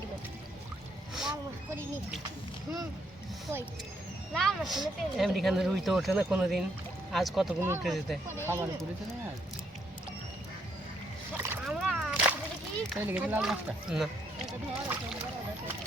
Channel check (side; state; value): both; normal; correlation 0.72